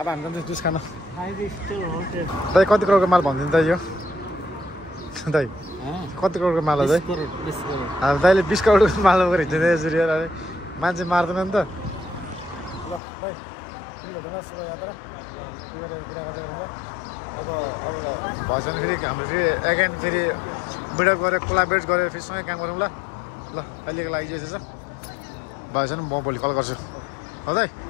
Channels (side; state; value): right; drops out; at 13.0 s